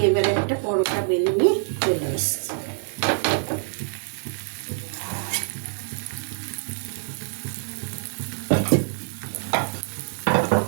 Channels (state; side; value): silent; left; digital silence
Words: এবারে একটা পরোটা বেলে নিয়ে চলে এসেছি।